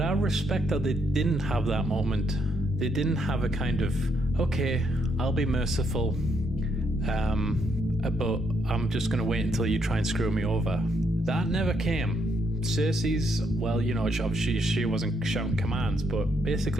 I respect that they didn't have that moment. They didn't have a kind of, okay, I'll be merciful, but I'm just going to wait until you try and screw me over. That never came. Cersei's, well, you know, obviously she wasn't shouting commands, but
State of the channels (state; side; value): normal; both; correlation 0.75